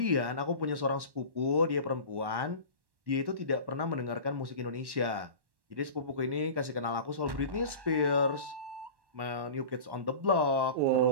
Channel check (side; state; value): left; late; 1.1 ms